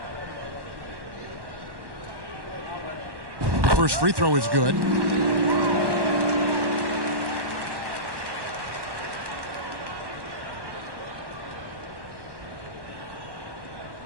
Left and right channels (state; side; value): late; left; 1.1 ms